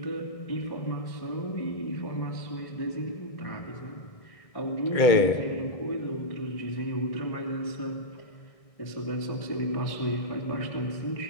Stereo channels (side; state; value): right; late; 1.6 ms